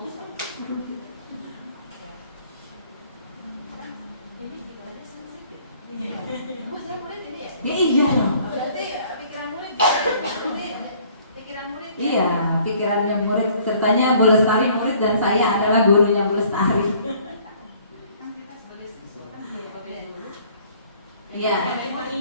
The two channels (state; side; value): inverted; both; correlation -0.57